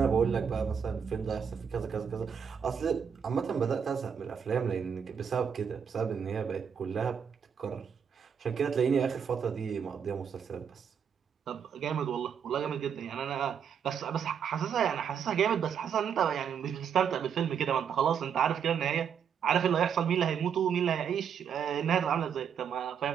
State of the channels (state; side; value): quieter; left; 7.4 dB